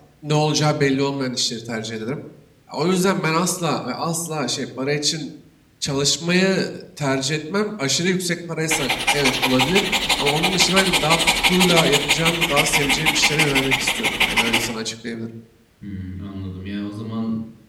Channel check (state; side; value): identical; both; correlation 1.00